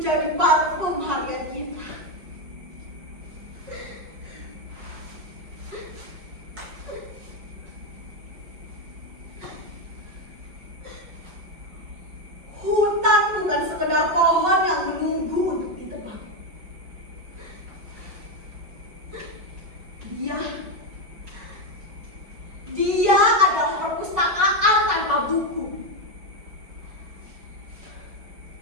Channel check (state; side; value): late; left; 5.3 ms